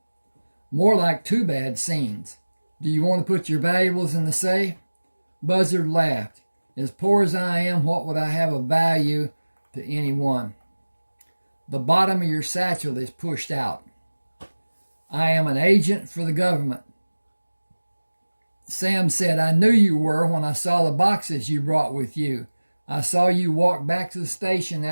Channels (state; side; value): inverted; both; correlation -1.00